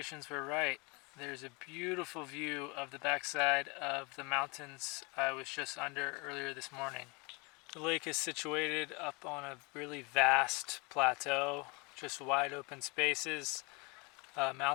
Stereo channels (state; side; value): quieter; right; 28.9 dB